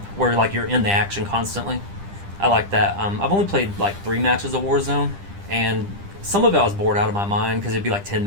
where like you're in the action constantly. I like that. I've only played like 3 matches of Warzone, and some of it I was bored out of my mind because it'd be like 10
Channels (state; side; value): late; left; 10 ms